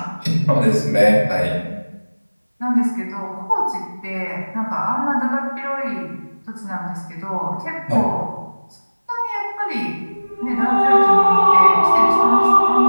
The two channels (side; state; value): both; inverted; correlation -1.00